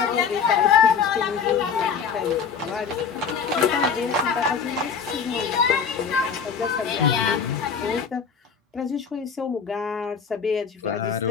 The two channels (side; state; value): right; quieter; 6.3 dB